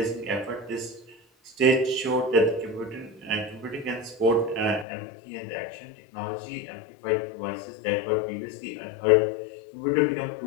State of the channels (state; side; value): drops out; right; at 4.9 s